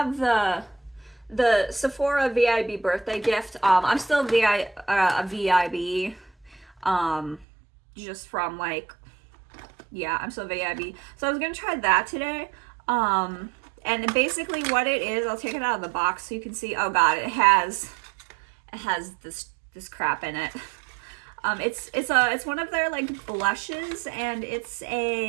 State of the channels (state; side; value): drops out; left; at 7.5 s